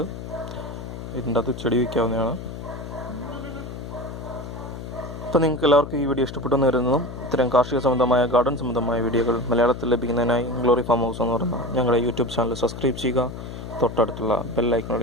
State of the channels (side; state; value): left; noise; hum, 9 dB below the sound